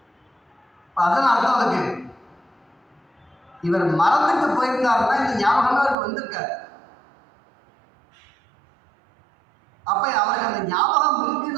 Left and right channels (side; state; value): left; drops out; at 6.0 s